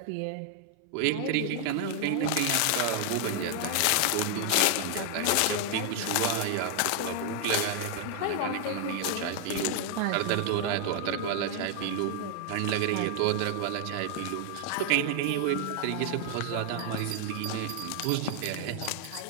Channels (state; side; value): different; both; correlation 0.00